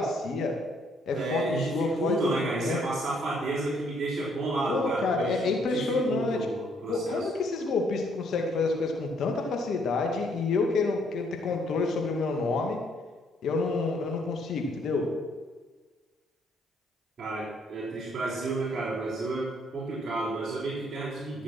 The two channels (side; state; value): both; normal; correlation 0.68